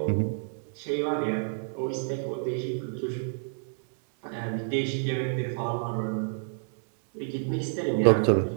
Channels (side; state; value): left; silent; 59 dB below the other